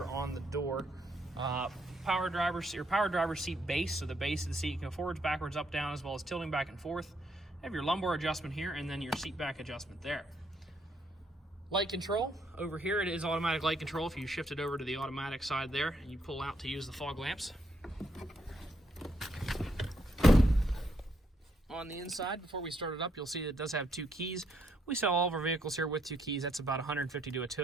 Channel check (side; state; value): both; normal; correlation 0.74